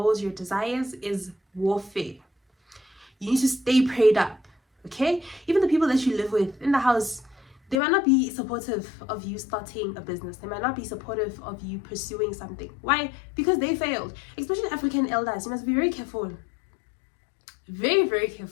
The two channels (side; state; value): right; drops out; at 7.8 s